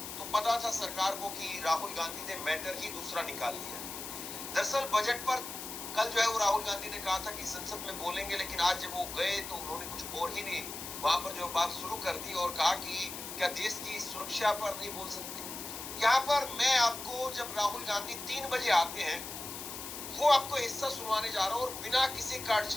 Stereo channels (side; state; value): left; noise; hiss, 8 dB below the sound